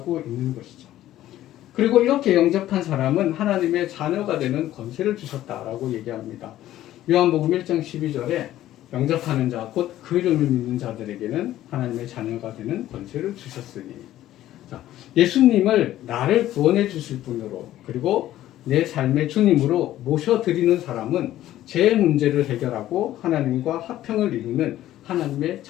있는 것이죠. 그리고 이렇게 영접한 사람은 하나님의 자녀가 되는 권세를 주셨다라고 얘기합니다. 요한복음 1장 12절에 영접하는 자, 곧 그 이름을 믿는 자들에게는 하나님의 자녀가 되는 권세를 주셨으니. 자, 예수님을 나를 구원해 주실 분으로 그리고 내 삶의 주님으로 모셔드리는 사람은 제 문제를 해결하고 하나님과 화평을 이루는 하나님의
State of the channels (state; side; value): quieter; right; 13.7 dB